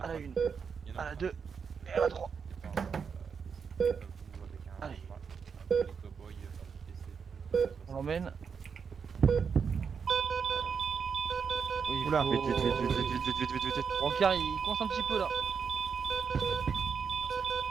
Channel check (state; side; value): quieter; left; 6.2 dB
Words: à la 1, à la 2 et à la 3. Allez. On l'emmène. Oui, Oula. Vite, vite, vite, vite, vite, vite, vite, vite, vite. Brancard, il coince un petit peu là.